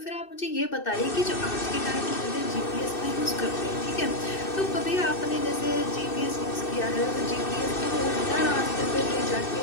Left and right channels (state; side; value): late; right; 2.6 ms